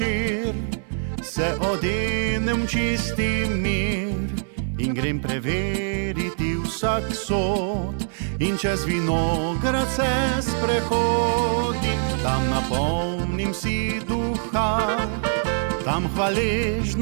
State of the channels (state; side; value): silent; left; 59 dB below the other